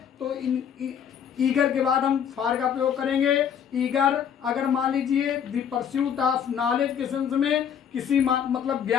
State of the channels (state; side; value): quieter; right; 8.4 dB